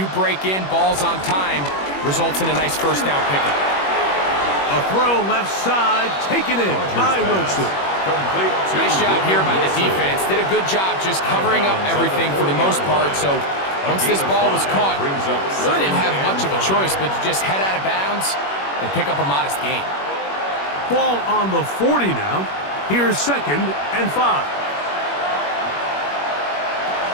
break in, balls on time, results in a nice first down pickup. A throw left side, taken in by Wilson. Nice job here by the defense. Did a good job just covering up everything for the most part. So once this ball was caught, really didn't have much of a choice but to just head out of bounds and pick up a modest gain. Ball on the 40 now. Here's second and 5.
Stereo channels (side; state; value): right; late; 21 ms